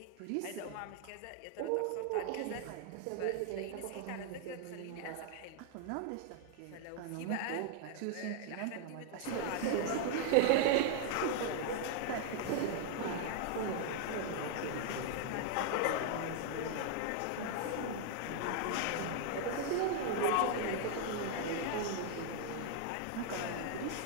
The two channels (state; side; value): different; both; correlation 0.00